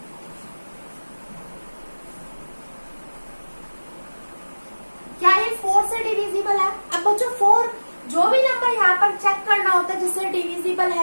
क्या ये 4 से डिविजिबल है? अब बच्चों 4 जो जो भी नंबर यहाँ पर चेक करना होता है जिससे डिविजिबल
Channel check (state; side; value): inverted; both; correlation -1.00